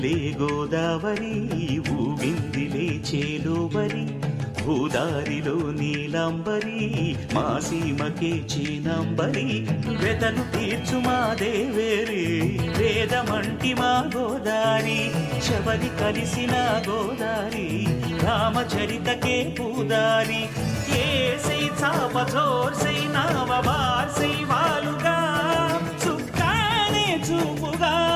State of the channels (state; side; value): identical; both; correlation 1.00